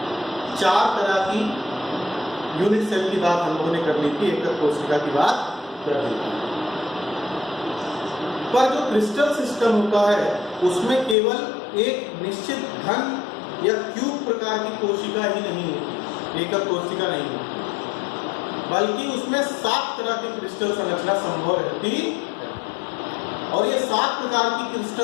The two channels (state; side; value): drops out; right; at 11.2 s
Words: 4 तरह की यूनिट सेल की बात हम लोगों ने कर ली थी, एकक कोशिका की बात कर ली थी। पर जो क्रिस्टल सिस्टम होता है उसमें केवल एक निश्चित घन या क्यूब प्रकार की कोशिका ही नहीं होती, एकक कोशिका नहीं होती, बल्कि उसमें 7 तरह की क्रिस्टल संरचना संभव रहती है। और ये 7 प्रकार की